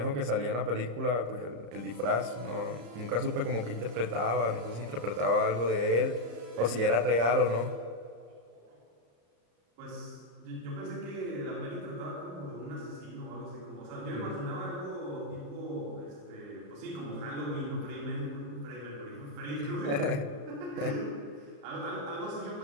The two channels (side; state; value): left; late; 34 ms